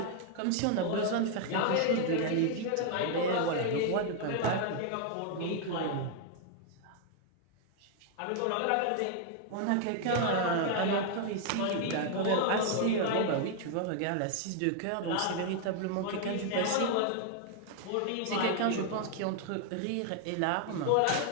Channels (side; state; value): both; different; correlation 0.00